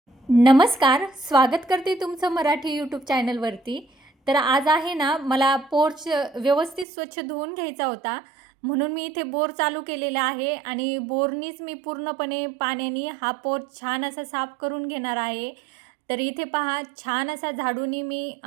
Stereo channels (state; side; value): drops out; left; at 6.9 s